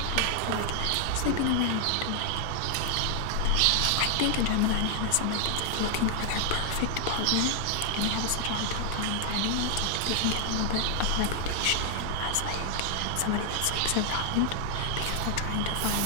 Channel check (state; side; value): different; both; correlation 0.00